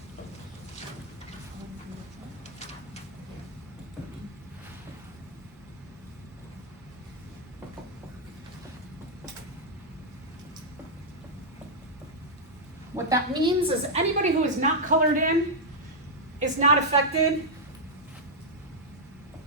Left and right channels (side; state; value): both; normal; correlation -0.05